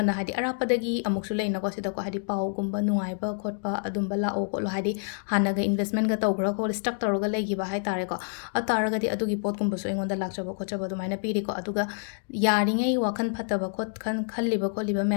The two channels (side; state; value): right; silent; digital silence